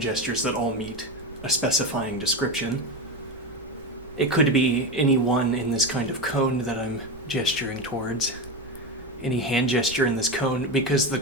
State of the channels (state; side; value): noise; right; rumble, 24 dB below the sound